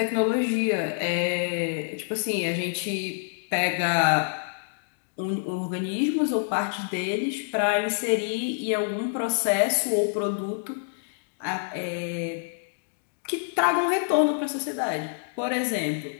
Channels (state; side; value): silent; right; digital silence